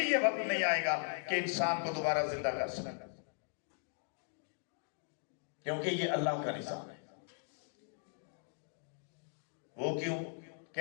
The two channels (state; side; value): silent; right; digital silence